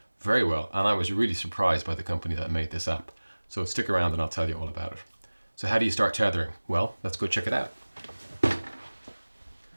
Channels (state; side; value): inverted; both; correlation -1.00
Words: very well, and I was really surprised by the company that made this app. So stick around and I'll tell you all about it. So how do you start tethering? Well, let's go check it out.